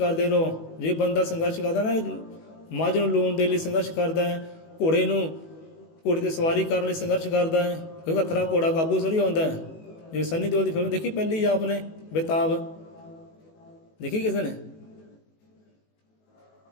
ਰਹੋ। ਜੇ ਬੰਦਾ ਸੰਘਰਸ਼ ਕਰਦਾ ਨਾ, ਮੱਝ ਨੂੰ ਲੂਣ ਦੇ ਲਈ ਸੰਘਰਸ਼ ਕਰਦਾ ਹੈ, ਘੋੜੇ 'ਤੇ ਸਵਾਰੀ ਕਰਨ ਲਈ ਸੰਘਰਸ਼ ਕਰਦਾ ਹੈ, ਕਿਉਂਕਿ ਹੱਥਰਾ ਘੋੜਾ ਕਾਬੂ ਥੋੜ੍ਹੀ ਆਉਂਦਾ ਹੈ। ਜਿਵੇਂ ਸੰਨੀ ਦਿਓਲ ਦੀ ਫਿਲਮ ਦੇਖੀ ਪਹਿਲੀ ਆਪ ਨੇ, ਬੇਤਾਬ, ਦੇਖੀ ਕਿਸੇ ਨੇ?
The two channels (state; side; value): late; right; 18 ms